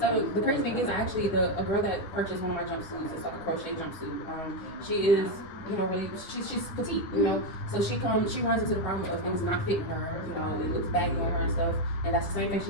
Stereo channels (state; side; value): late; right; 10 ms